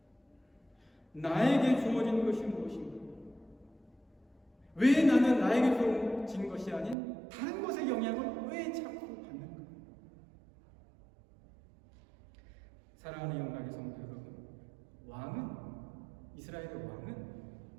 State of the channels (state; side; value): drops out; left; at 7.0 s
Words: 나에게 주어진 것이 무엇인가? 왜 나는 나에게 주어진 것이 아닌 다른 것의 영향을 왜 자꾸 받는가? 사랑하는 영광의 성도 여러분, 왕은, 이스라엘의 왕은